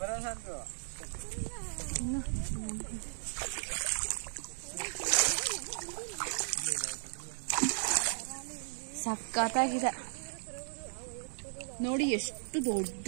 ಸಖತ್ತಾಗಿದೆ ನೋಡಿ, ಎಷ್ಟು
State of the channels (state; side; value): silent; left; digital silence